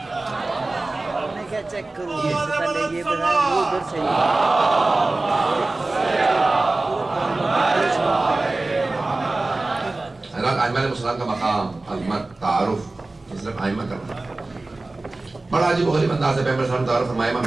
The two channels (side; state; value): left; quieter; 3.1 dB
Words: چیک کروں اس سے پہلے یہ بتائیں وہ ادھر سے حضرت ائمہ علیہ السلام کا مقام عظمت تعارف صرف ائمہ کرنا بڑا عجیب و غریب انداز ہے. پیغمبر صلی اللہ علیہ وسلم تعارف فرمایا. امام